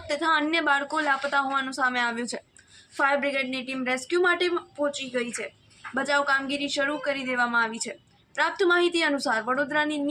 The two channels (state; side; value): identical; both; correlation 1.00